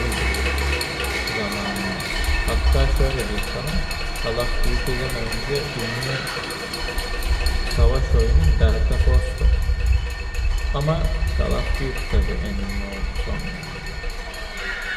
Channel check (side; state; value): both; identical; correlation 1.00